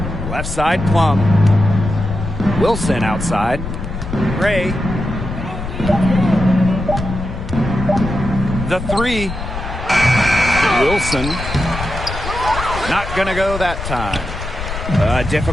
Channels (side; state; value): left; noise; rumble, 7 dB below the sound